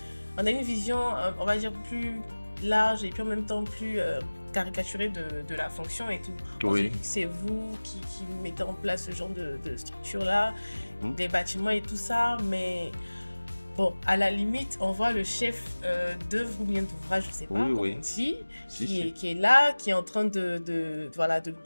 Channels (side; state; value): both; inverted; correlation -1.00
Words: On a une vision, on va dire, plus large et puis en même temps plus caricaturée de la fonction et tout. On se dit que c'est vous qui mettez en place ce genre de structure-là, des bâtiments et tout ça, mais bon, à la limite, on voit le chef d'œuvre ou bien d'ouvrage, je ne sais pas comment on dit, qui est là, qui est en train de